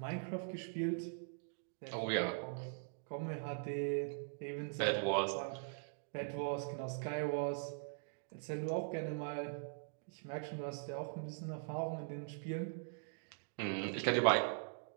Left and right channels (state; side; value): silent; left; digital silence